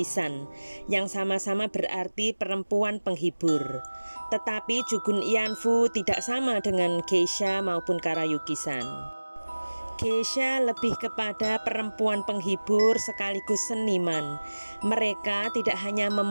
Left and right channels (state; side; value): inverted; both; correlation -1.00